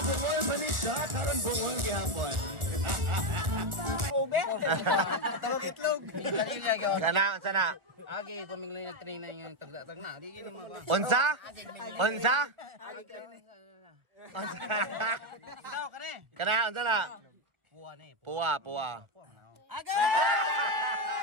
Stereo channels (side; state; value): left; late; 1.4 ms